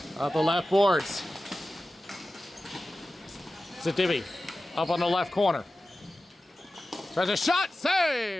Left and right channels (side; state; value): both; normal; correlation 0.95